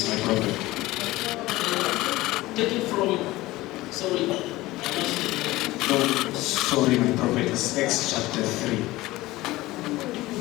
my prophet. Take it from, sorry. No, sorry, my prophet. It's Acts chapter 3.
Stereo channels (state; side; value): quieter; right; 18.5 dB